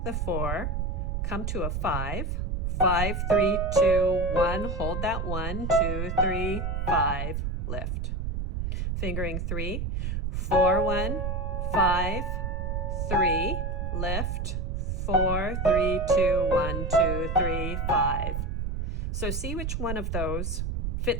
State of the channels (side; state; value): right; noise; rumble, 1 dB below the sound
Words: the 4, come to a 5, 5, 3, 2, 1. Hold that 1, 2, 3, 5, lift. Fingering 3, 4, 1, 5, 3, lift. 4, 3, 2, 1, 2, 3, 5. So see which one of those